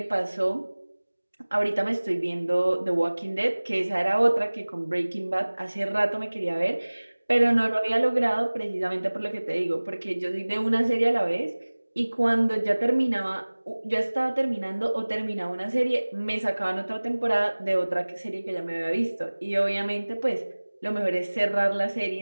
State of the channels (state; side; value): inverted; both; correlation -1.00